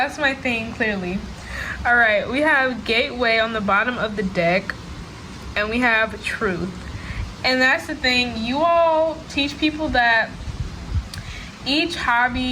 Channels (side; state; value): both; identical; correlation 1.00